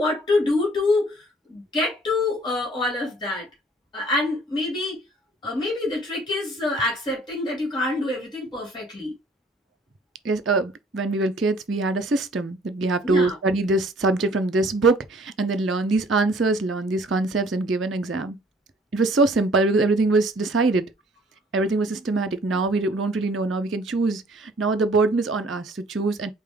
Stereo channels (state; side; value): normal; both; correlation 0.56